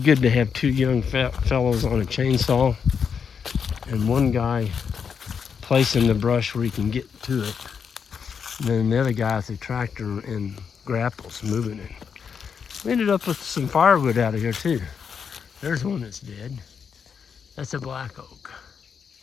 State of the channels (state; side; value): quieter; right; 6.7 dB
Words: to have two young fellows on a chainsaw and one guy placing the brush where he can get to it, and then the other guy with the tractor and grapples moving it. We ended up with some firewood out of here too. There's one that's dead. That's a black oak.